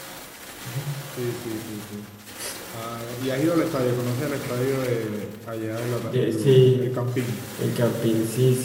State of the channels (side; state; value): both; identical; correlation 1.00